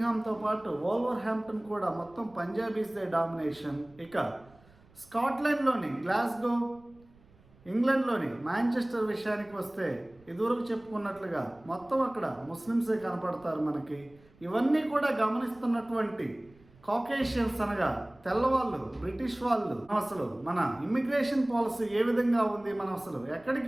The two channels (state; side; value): noise; right; rumble, 28 dB below the sound